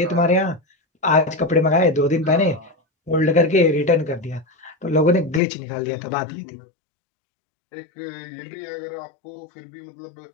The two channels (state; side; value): drops out; right; at 5.4 s